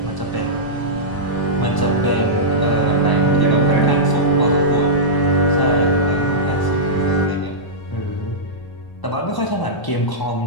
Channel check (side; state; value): right; late; 1.0 ms